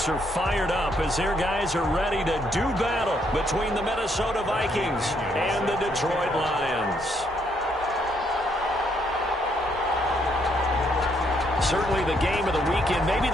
are fired up as their guys are ready to do battle between the Minnesota Vikings and the Detroit Lions. Certainly the game of the weekend, maybe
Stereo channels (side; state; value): both; normal; correlation 0.72